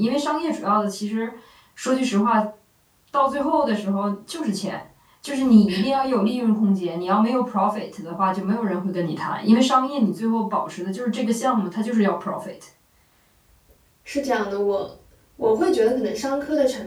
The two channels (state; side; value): identical; both; correlation 1.00